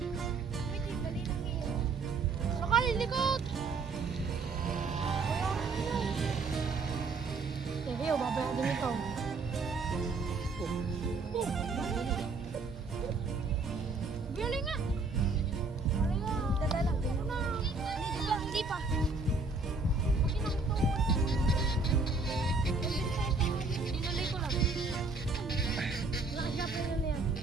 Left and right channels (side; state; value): left; quieter; 3.9 dB